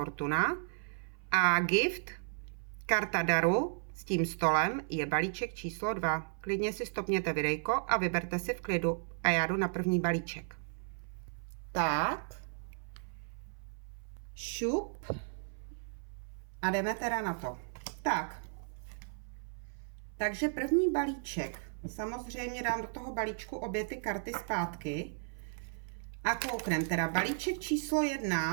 a gift, karta daru s tím stolem, je balíček číslo 2. Klidně si stopněte videjko a vyberte si v klidu a já jdu na první balíček. Tak, šup a jdeme teda na to. Tak. Takže první balíček, samozřejmě dám do toho balíčku obě ty karty zpátky a kouknem teda balíček číslo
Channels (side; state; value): left; silent; 55 dB below the other